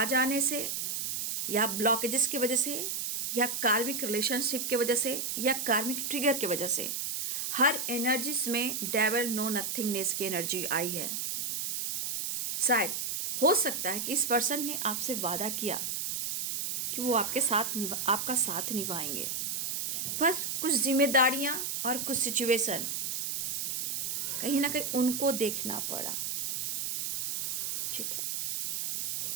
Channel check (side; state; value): right; noise; hiss, 2 dB below the sound